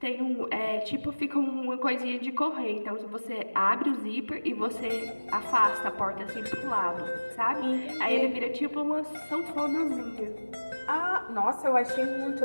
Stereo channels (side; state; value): both; inverted; correlation -1.00